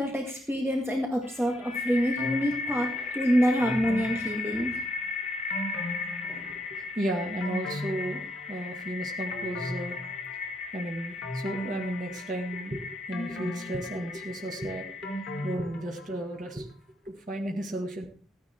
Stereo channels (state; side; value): normal; both; correlation 0.75